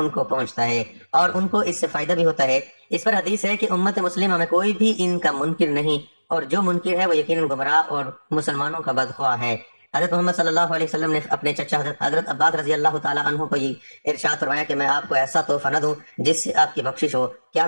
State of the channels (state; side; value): inverted; both; correlation -1.00